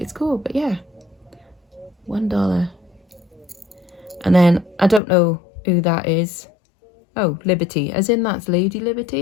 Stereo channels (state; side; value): drops out; right; at 5.0 s